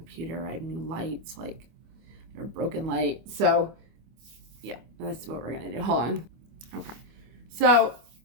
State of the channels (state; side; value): late; left; 25 ms